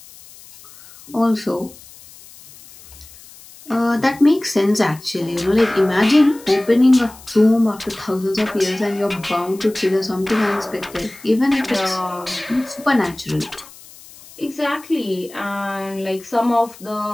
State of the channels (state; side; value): noise; left; hiss, 21 dB below the sound